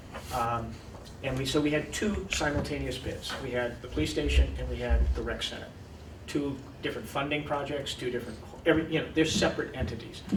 So we had two simultaneous bids. We had the police station and we had the rec center. Two different funding projects, two different, they're separate entities.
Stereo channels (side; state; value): both; identical; correlation 1.00